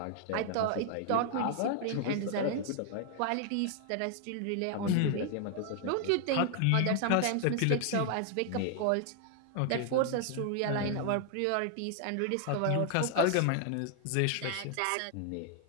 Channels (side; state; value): both; different; correlation 0.00